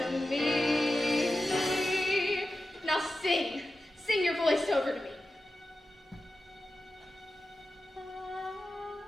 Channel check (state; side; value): normal; both; correlation 0.93